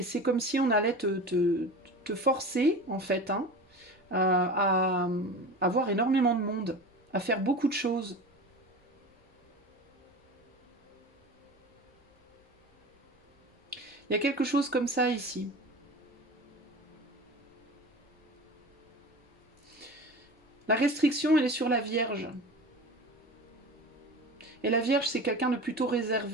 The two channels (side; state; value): both; normal; correlation 0.33